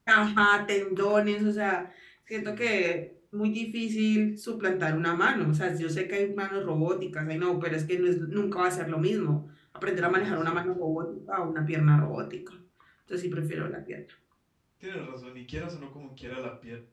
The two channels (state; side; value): identical; both; correlation 1.00